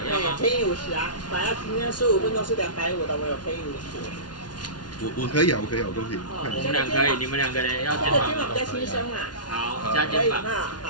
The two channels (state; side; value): late; right; 0.70 ms